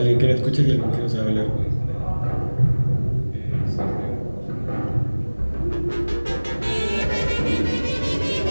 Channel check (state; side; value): inverted; both; correlation -1.00